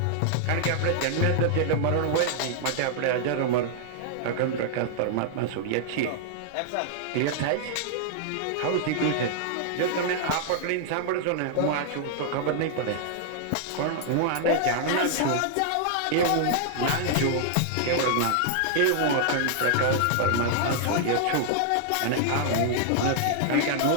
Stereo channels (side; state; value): both; different; correlation -0.01